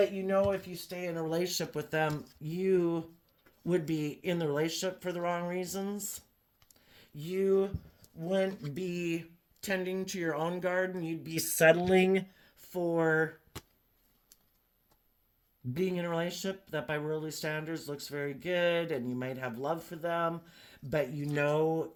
you know, if you stay in a relationship with them, you would be in the relationship for the wrong reasons. You wouldn't be tending to your own garden. You'd be settling for being in a relationship that by worldly standards looks very good, and you might have love for them, but you know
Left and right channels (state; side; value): identical; both; correlation 1.00